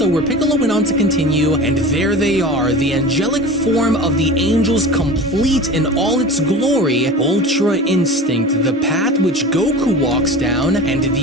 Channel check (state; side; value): normal; both; correlation 0.35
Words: where Piccolo went on to continue, and there they are, the angelic form of the angels complete in all its glory, Ultra Instinct, the path which Goku walks down, and